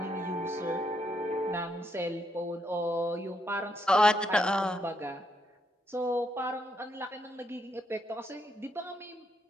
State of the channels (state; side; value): normal; both; correlation 0.77